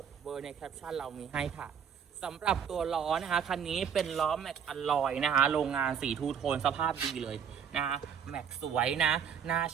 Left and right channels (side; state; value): left; quieter; 7.7 dB